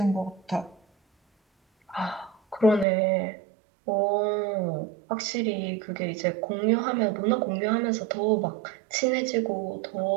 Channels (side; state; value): left; drops out; at 2.9 s